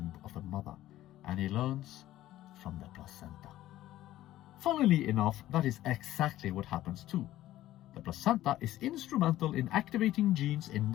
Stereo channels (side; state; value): right; quieter; 14.4 dB